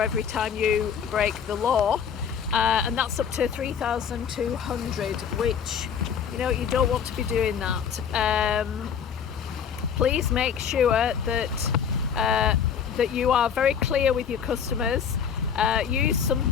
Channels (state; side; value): quieter; right; 7.5 dB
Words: every time you break the law, and that's up to 3,200, which, you don't want to be doing that. Please make sure that you are very clear with your customers. Use some